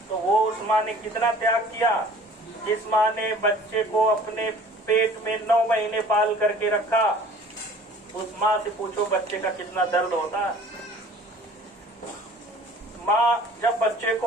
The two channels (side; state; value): both; normal; correlation 0.49